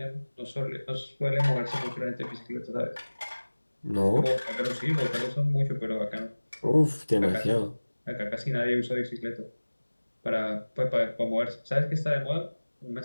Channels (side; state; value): both; inverted; correlation -1.00